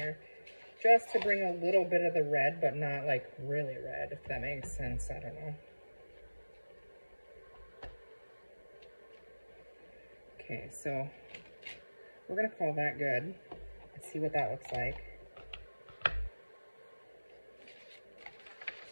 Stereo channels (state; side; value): inverted; both; correlation -1.00